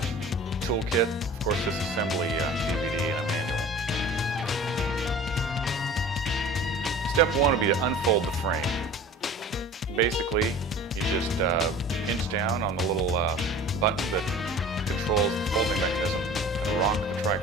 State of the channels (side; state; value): both; normal; correlation 0.42